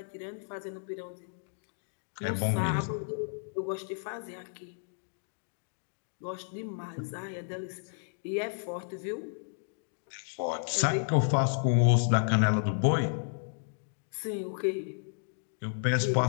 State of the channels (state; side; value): silent; right; digital silence